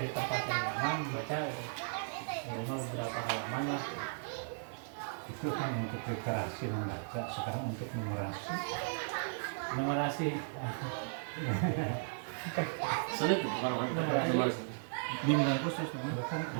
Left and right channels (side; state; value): left; silent; digital silence